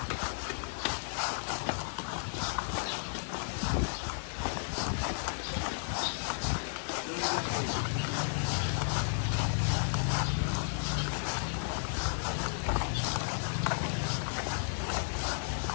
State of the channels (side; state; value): right; silent; 55 dB below the other